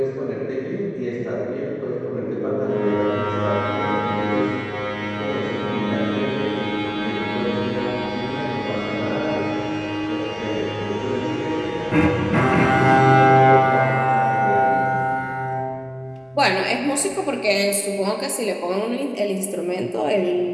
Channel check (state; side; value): identical; both; correlation 1.00